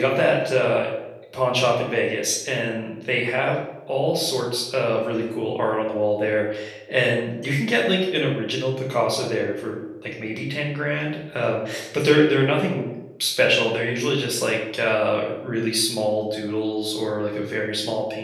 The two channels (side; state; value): both; identical; correlation 1.00